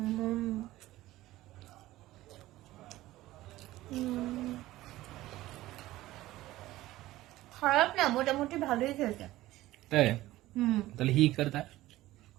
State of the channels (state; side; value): quieter; left; 16.5 dB